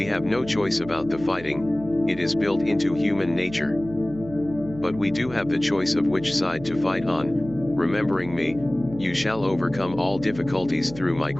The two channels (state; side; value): noise; right; hum, 15 dB below the sound